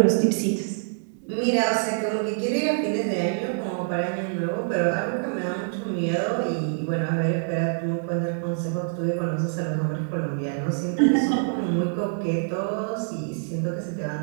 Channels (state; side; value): silent; left; 61 dB below the other